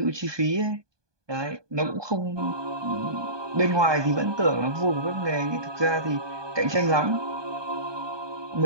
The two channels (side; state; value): left; late; 1.2 ms